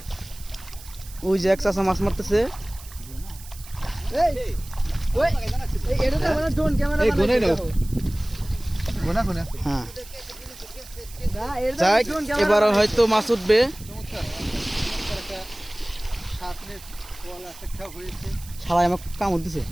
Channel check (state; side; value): noise; right; hiss, 18 dB below the sound